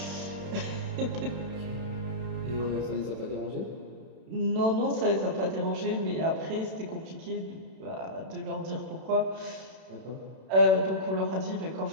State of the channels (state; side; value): late; left; 32 ms